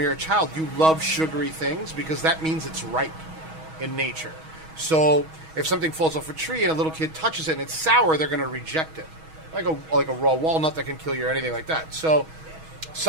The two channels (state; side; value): late; left; 6.3 ms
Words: you're a child, you love sugary things because that means it's ripe in nature. So if something falls off a tree and a little kid touches it and it's sour, they're going to reject it, like a raw walnut that can kill you or anything like that. So